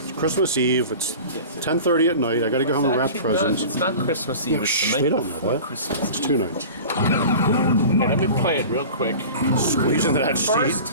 Christmas Eve. It's 10:30 at night. I got to go home and wrap Actually, presents. No, it's not Christmas Eve. Yeah, It's shh, the night they don't know before that. Christmas. It's 2 nights. Okay, let me play it real quick. Squeeze into that First seat.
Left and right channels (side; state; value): both; inverted; correlation -0.37